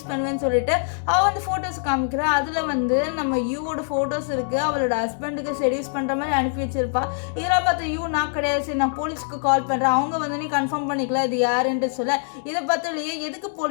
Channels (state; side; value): silent; right; 63 dB below the other